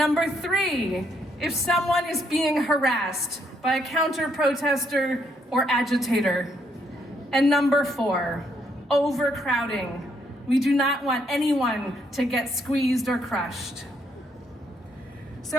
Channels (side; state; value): both; normal; correlation 0.72